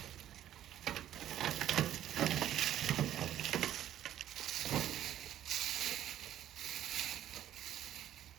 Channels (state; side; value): quieter; left; 11.7 dB